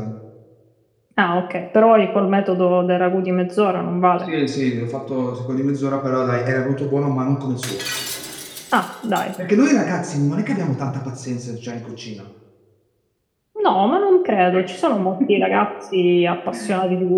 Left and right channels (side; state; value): both; identical; correlation 1.00